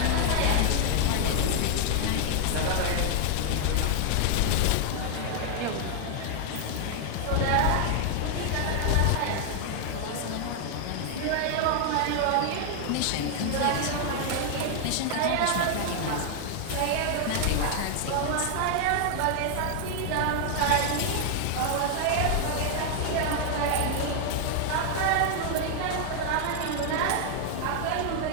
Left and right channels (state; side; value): different; both; correlation 0.00